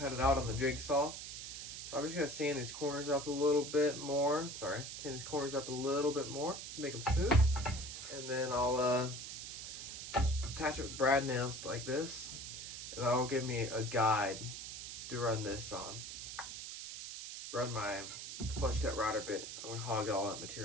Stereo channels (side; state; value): right; noise; hiss, 8 dB below the sound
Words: it out on the jigsaw. So I'm just going to sand these corners up a little bit more. Sand these corners up a little bit more, make them smooth. And then I'll just attach it with brad nails like this. And that'll give me a guide to run this on. Run my flush cut router bit. I'm going to hog all that